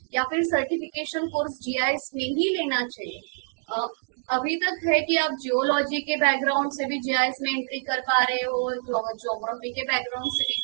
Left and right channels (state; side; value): silent; left; digital silence